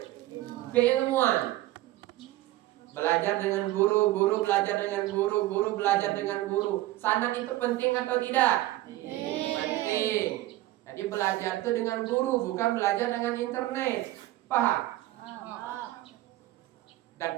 keilmuan. Belajar dengan guru, guru belajar dengan guru, guru belajar dengan guru. Sanad itu penting atau tidak? Penting. Jadi belajar itu dengan guru, bukan belajar dengan internet. Paham?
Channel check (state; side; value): quieter; left; 16.5 dB